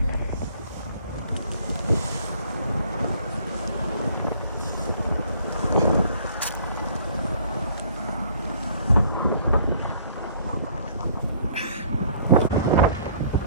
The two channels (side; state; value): both; inverted; correlation -0.57